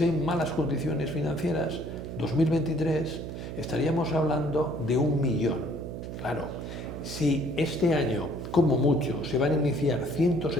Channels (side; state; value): right; noise; hum, 8 dB below the sound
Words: hay malas condiciones financieras, 2023, estaríamos hablando de 1 millón. Claro, si este año, como mucho, se van a iniciar